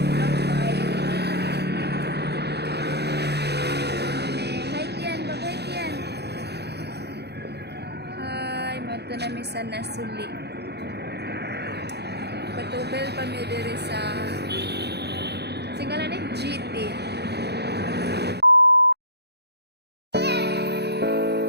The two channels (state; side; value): late; left; 0.48 ms